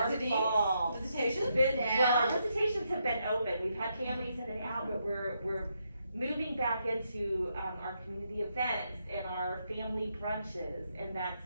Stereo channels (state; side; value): inverted; both; correlation -0.79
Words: fall. Visitations? Well, our visitations have been open, we've had families in and out, but we're moving back into, our community events and our family brunches, and that's